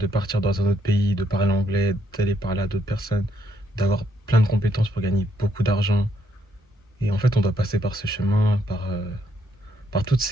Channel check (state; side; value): normal; both; correlation 0.74